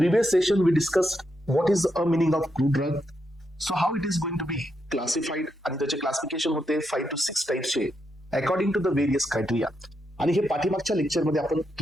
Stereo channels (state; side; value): normal; both; correlation 0.82